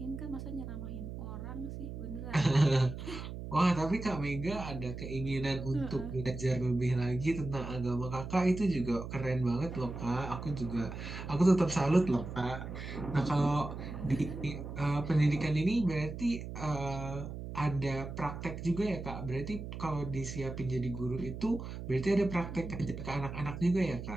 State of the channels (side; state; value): right; noise; hum, 8 dB below the sound